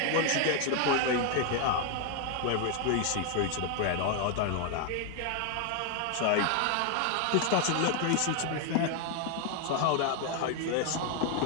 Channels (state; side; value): different; both; correlation 0.00